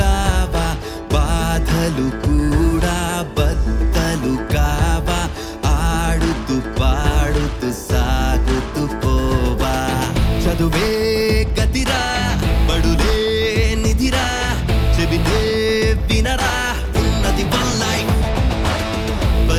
బాధలు కూడా బద్దలు కావా ఆడుతూ పాడుతూ సాగుతూ పోవా చదువే గతిరా బడులే నిధిరా చెబితే వినరా ఉన్నది వన్ లైఫ్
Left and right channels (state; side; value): identical; both; correlation 1.00